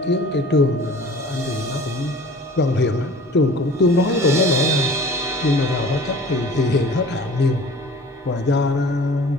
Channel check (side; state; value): both; normal; correlation 0.45